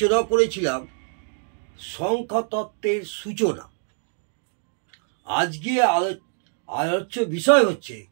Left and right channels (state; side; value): silent; left; 61 dB below the other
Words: করেছিলাম সংখ্যাতত্ত্বের সূচনা। আজকে আলোচ্য বিষয় হচ্ছে